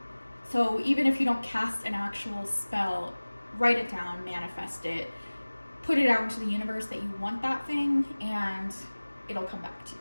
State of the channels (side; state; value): both; inverted; correlation -1.00